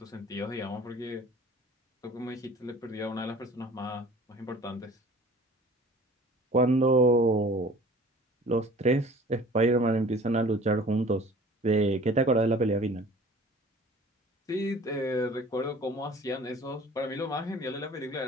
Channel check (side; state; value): both; normal; correlation 0.46